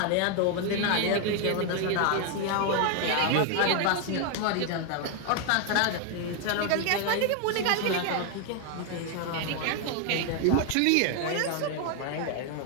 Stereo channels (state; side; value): different; both; correlation 0.01